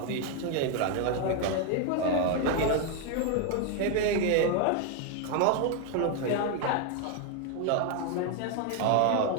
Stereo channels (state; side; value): different; both; correlation 0.00